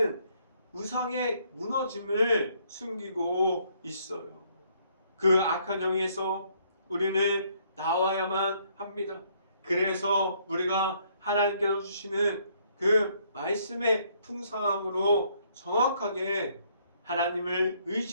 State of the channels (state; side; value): inverted; both; correlation -0.67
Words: 우상의 무너짐을 숨기고 있어요. 그 악한 영에서 우리는 나와야만 합니다. 그래서 우리가 하나님께서 주시는 그 말씀의 풍성함으로 정확하게 하나님을